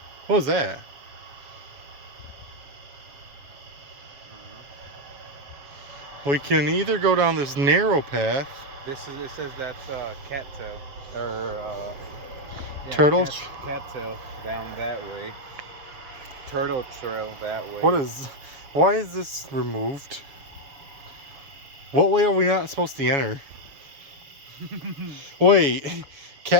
What was that? We can either go down this narrow path. It says that's cattail or yeah, Turtle. cattail down that way. Turtle trail that way. Why is this removed? What way are we not supposed to enter? Wait,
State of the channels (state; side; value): late; left; 7.2 ms